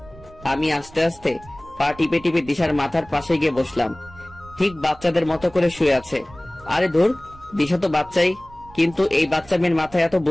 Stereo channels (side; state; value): right; noise; rumble, 22 dB below the sound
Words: আমি আস্তে আস্তে পা টিপে টিপে দিশার মাথার পাশে গিয়ে বসলাম। ঠিক বাচ্চাদের মতো করে শুয়ে আছে। আরে ধুর, দিশা তো বাচ্চাই, কিন্তু এই বাচ্চা মেয়ের মাথায় এত